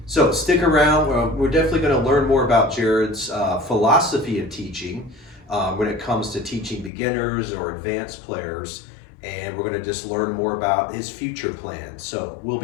So stick around. We're definitely going to learn more about Jared's philosophy of teaching when it comes to teaching beginners or advanced players. And we're going to just learn more about his future plans. So we'll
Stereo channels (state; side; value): drops out; right; at 6.9 s